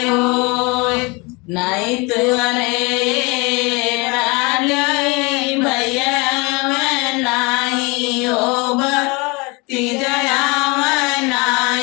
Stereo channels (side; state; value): right; quieter; 27.4 dB